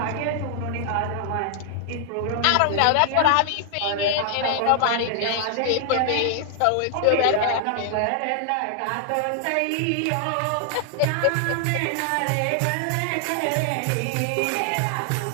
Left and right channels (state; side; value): different; both; correlation 0.00